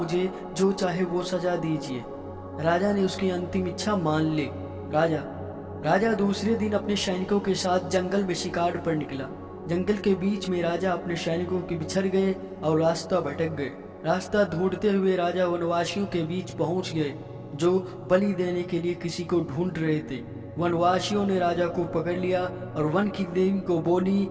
जो चाहे वो सजा दीजिए। राजा ने उसकी अंतिम इच्छा मान ली। राजा दूसरे दिन अपने सैनिकों के साथ जंगल में शिकार पर निकला। जंगल के बीच में राजा अपने सैनिकों के बिछड़ गए और रास्ता भटक गए। रास्ता ढूंढते हुए राजा वनवासियों के बीच पहुंच गए, जो बलि देने के लिए किसी को ढूंढ रहे थे। वनवासियों ने राजा को पकड़ लिया और वन की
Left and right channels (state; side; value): identical; both; correlation 1.00